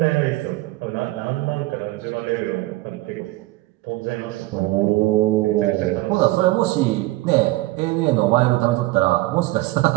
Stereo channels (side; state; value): left; quieter; 19.2 dB